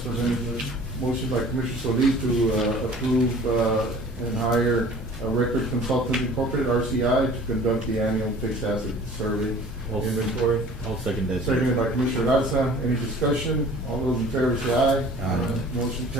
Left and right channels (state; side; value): normal; both; correlation 0.47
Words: presented, Judge. Motion by Commissioner Solis to, approve, and hire a Record Consultant Incorporated, RCI, to conduct the annual fixed asset survey I'll- inventory. I'll second that. Seconded by Commissioner Garza. Any discussion? All those in favor say aye. Aye. Motion